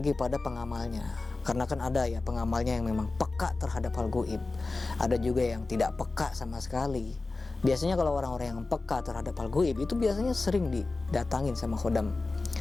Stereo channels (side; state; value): right; quieter; 3.5 dB